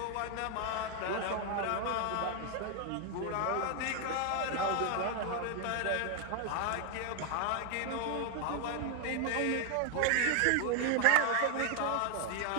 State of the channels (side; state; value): both; different; correlation 0.00